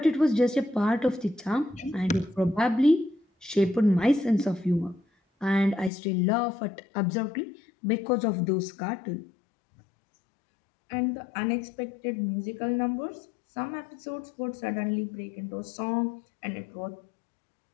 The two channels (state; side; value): drops out; right; at 5.9 s